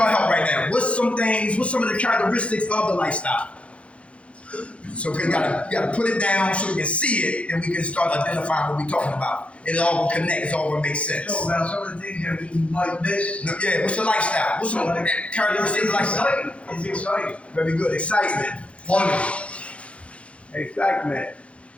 help right now. What's some of the characteristics of the lifestyle? So we gotta put it down so we can see it and we can start identifying what we're talking about. It all will connect. It all will make sense. So about some of the things that we might miss. No, yeah. What's the lifestyle? What's some of the characteristics of the lifestyle? It's exciting. Very good. Excitement. Money. Excitement.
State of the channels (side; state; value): right; late; 0.062 ms